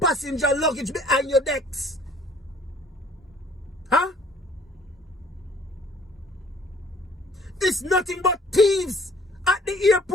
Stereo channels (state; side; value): normal; both; correlation 0.56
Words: passenger luggage behind your decks? Huh? It's nothing but thieves at the